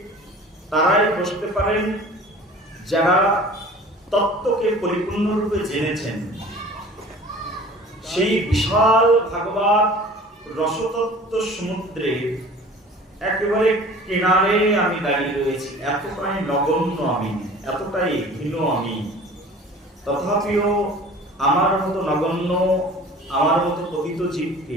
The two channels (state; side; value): normal; both; correlation 0.44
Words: তারাই বসতে পারেন যারা তত্ত্বকে পরিপূর্ণরূপে জেনেছেন। সেই বিশাল ভাগবত রসতত্ত্ব সমুদ্রে একেবারে কিনারে আমি দাঁড়িয়ে রয়েছি। এতটাই নগণ্য আমি, এতটাই হীন আমি, তথাপিও আমার মতো নগণ্য, আমার মতো পতিত